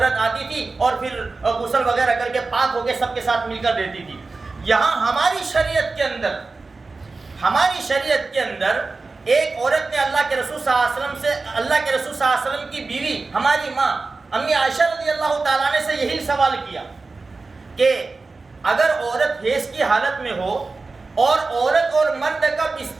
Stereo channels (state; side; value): quieter; left; 3.8 dB